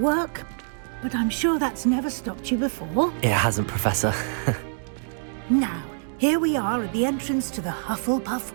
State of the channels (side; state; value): left; silent; digital silence